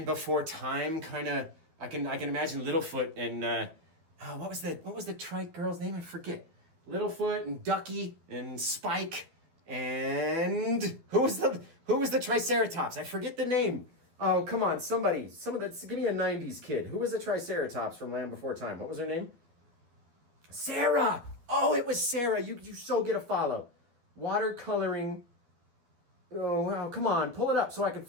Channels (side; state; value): left; late; 12 ms